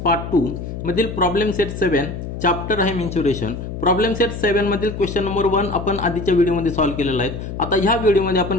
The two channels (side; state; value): left; noise; hum, 7 dB below the sound